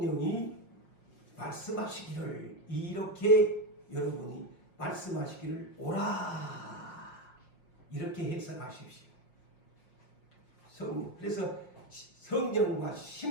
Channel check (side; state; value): right; late; 5.6 ms